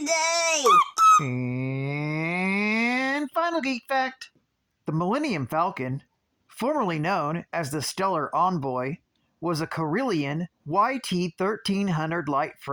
And final geek fact: the Millennium Falcon, formerly known as the Stellar Envoy, was a Corellian YT-1300 light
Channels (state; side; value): identical; both; correlation 1.00